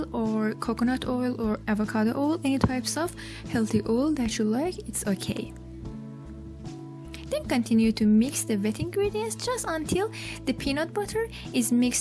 or coconut oil or avocado oil. Any types of healthy oil that you like, it's okay. Then continue to mix the wet ingredients just until the peanut butter is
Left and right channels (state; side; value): identical; both; correlation 1.00